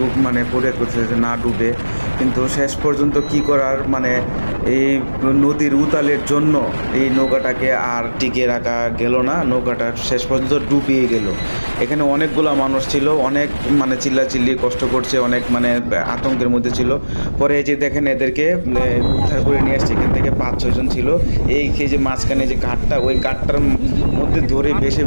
মানে ফরিয়াদ করতেছে যে না ডুবে। কিন্তু শেষ পর্যন্ত কি করার, মানে এই নদীর উতালের জন্য এই নৌকাটাকে আর টিকিয়ে রাখা গেল না, নৌকাটা শেষ পর্যন্ত ডুবিয়ে গেল। এখানে অনেকগুলো মানুষ ছিল, অনেক মানে চিল্লাচিল্লি কষ্ট করছে, অনেক মানে আতঙ্কের মধ্যে ছিল। পরে এই যে দেখেন এদেরকে উদ্ধার করে নিয়ে আসছে। এখান থেকে 5-6 জন ছিল। এই যে মাঝখানে যে ঘাটটা, ওই ঘাটটার মধ্যে ধরে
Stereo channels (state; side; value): inverted; both; correlation -1.00